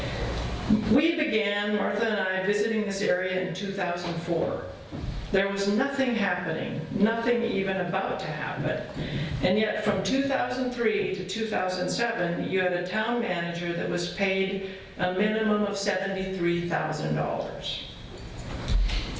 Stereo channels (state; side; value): identical; both; correlation 1.00